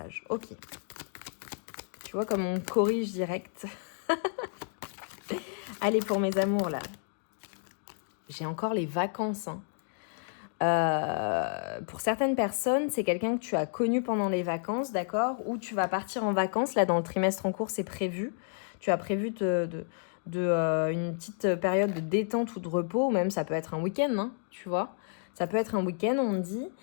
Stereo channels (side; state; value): right; silent; digital silence